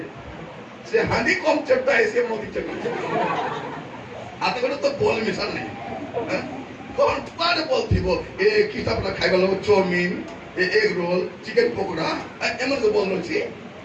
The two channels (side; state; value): both; identical; correlation 1.00